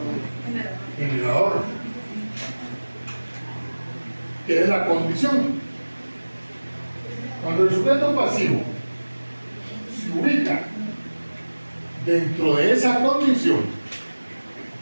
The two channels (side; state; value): both; inverted; correlation -1.00